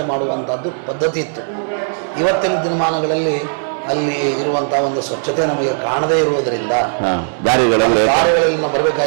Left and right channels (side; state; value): left; silent; 68 dB below the other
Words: ಮಾಡುವಂತಹದ್ದು ಪದ್ಧತಿ ಇತ್ತು. ಇವತ್ತಿನ ದಿನಮಾನಗಳಲ್ಲಿ ಅಲ್ಲಿ ಇರುವಂತಹ ಒಂದು ಸ್ವಚ್ಛತೆ ನಮಗೆ ಕಾಣದೇ ಇರುವುದರಿಂದ ದಾರಿಗಳಲ್ಲಿ ನಾವು